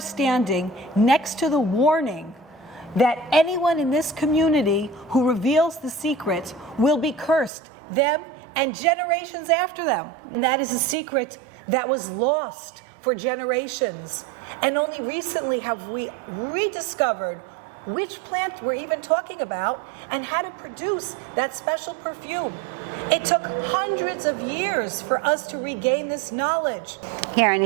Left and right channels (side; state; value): left; drops out; at 7.5 s